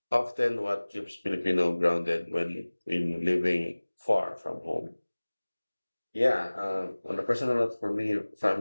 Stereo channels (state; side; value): inverted; both; correlation -1.00